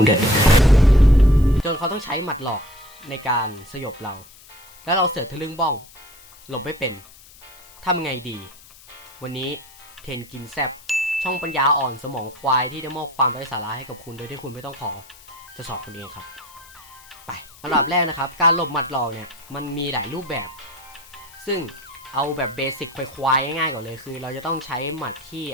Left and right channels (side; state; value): left; noise; hiss, 22 dB below the sound